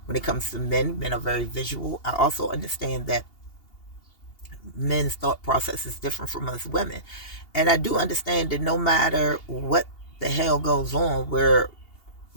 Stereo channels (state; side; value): late; right; 2.8 ms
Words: when it comes to men are very visual. I also understand that men's thought process is different from us women. And I do understand that no matter what the hell goes on, we're